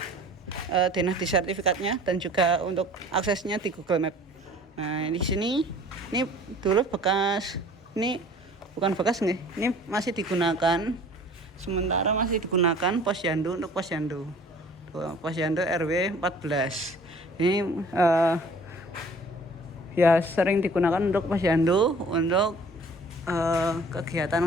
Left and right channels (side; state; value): both; normal; correlation 0.50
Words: dinasti sertifikatnya dan juga untuk aksesnya di Google Map. Nah, di sini ini dulu bekas, ini bukan bekas nih, ini masih digunakan sementara masih digunakan posyandu untuk posyandu. Posyandu RW 14. Ini ya sering digunakan untuk posyandu untuk kegiatan